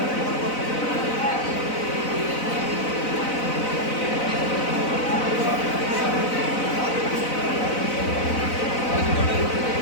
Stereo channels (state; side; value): late; right; 4.0 ms